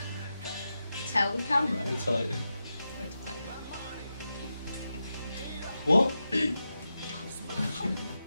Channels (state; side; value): inverted; both; correlation -0.90